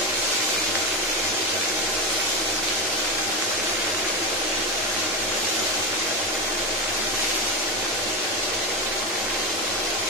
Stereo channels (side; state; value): both; normal; correlation 0.15